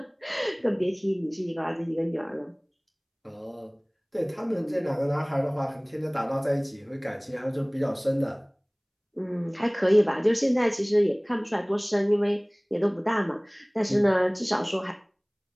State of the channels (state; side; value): identical; both; correlation 1.00